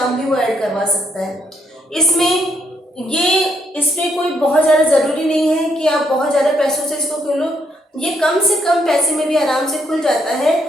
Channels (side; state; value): both; normal; correlation 0.74